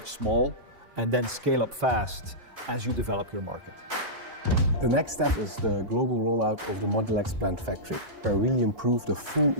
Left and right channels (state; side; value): late; left; 4.0 ms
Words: small and then scale up fast as you develop your market. The next step is the global rollout of the Modulex plant factory, where we really improve the full